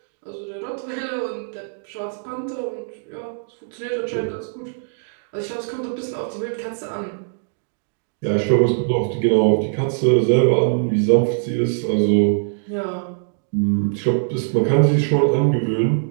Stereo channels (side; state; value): left; silent; digital silence